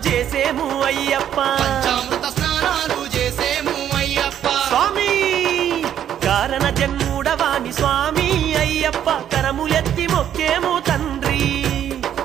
చేసేము అయ్యప్ప పంచామృత స్నానాలు చేసేము అయ్యప్ప స్వామి కారణ జన్ముడవాని స్వామి అయ్యప్ప కరములెత్తి మొక్కేము తండ్రి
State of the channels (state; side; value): quieter; left; 10.1 dB